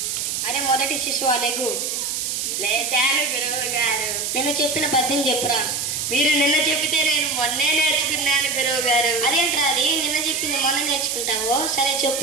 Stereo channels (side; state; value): right; noise; hiss, 2 dB below the sound